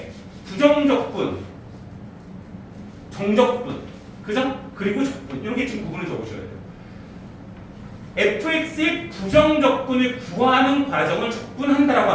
부정적분, 정적분, 그죠? 그리고 적분 이렇게 지금 구분을 적으셔야 돼요. fx의 부정적분을 구하는 과정을 적분한다라고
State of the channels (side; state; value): both; identical; correlation 1.00